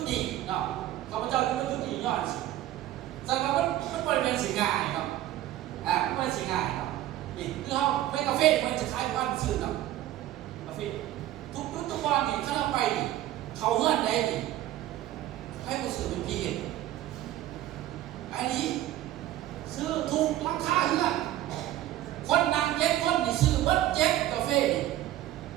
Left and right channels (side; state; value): left; quieter; 13.9 dB